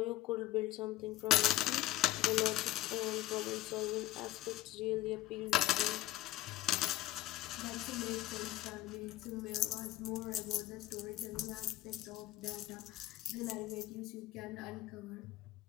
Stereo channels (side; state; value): right; quieter; 15.7 dB